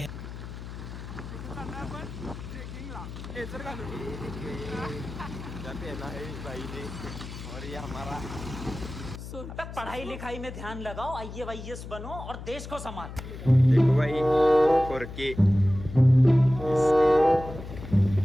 और ये हमारा पढ़ाई लिखाई में ध्यान लगाओ IAS बनो और देश को संभाल देखो भाई 4K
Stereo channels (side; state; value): left; noise; hum, 11 dB below the sound